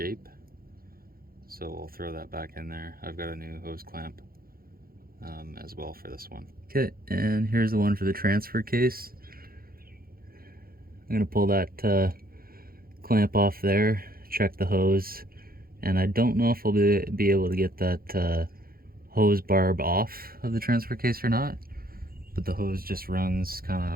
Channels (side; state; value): left; late; 0.43 ms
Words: So we'll throw that back in there. I've got a new hose clamp as well for this one. Okay, and here's the one for the transfer case. I'm gonna pull that clamp off there, check the hose, and I don't know if I'll be able to get that hose barb off of the transfer case or not, but the hose just runs kind of